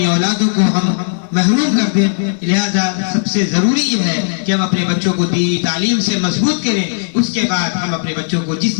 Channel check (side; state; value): right; silent; digital silence